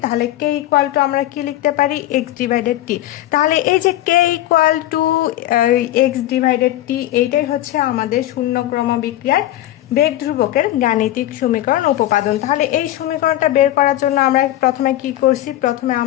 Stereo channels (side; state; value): right; quieter; 14.2 dB